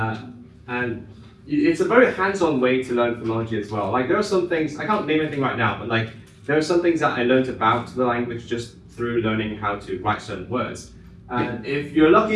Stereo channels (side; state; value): both; identical; correlation 1.00